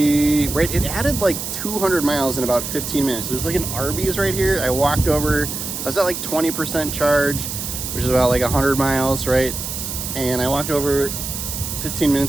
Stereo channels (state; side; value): noise; right; hiss, 5 dB below the sound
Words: added like 200 miles in about 15 minutes. There's like an Arby's right here. I walked over, I was at like 20% charge, which is about like 100 miles, right? And I walked over 15